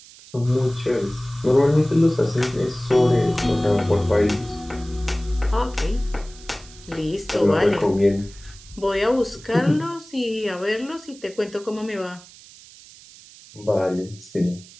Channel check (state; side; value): noise; right; hiss, 21 dB below the sound